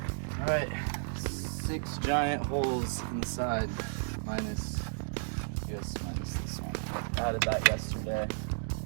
All right. 6 giant holes inside, minus this one. I added that yesterday.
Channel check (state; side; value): silent; left; digital silence